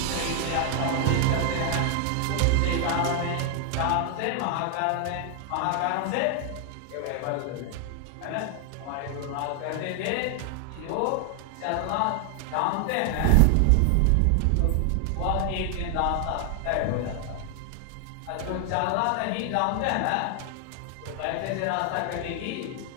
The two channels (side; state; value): both; different; correlation 0.00